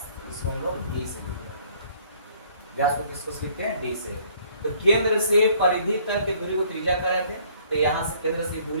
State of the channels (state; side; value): inverted; both; correlation -0.60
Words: इसको हम लोग d से लिखते हैं। व्यास को किसको लिखते हैं? d से। तो केंद्र से परिधि तक की दूरी को त्रिज्या कर रहे थे, तो यहाँ से केंद्र से